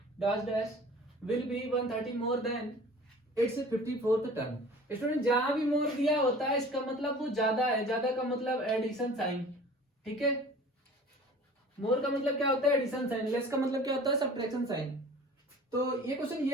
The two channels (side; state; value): both; normal; correlation 0.44